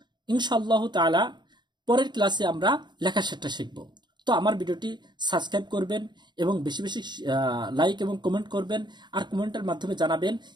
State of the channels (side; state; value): left; late; 0.21 ms